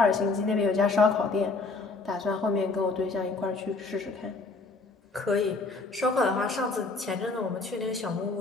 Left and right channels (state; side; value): quieter; right; 3.8 dB